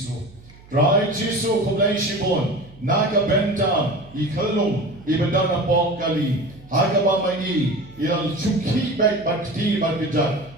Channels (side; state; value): right; noise; hum, 23 dB below the sound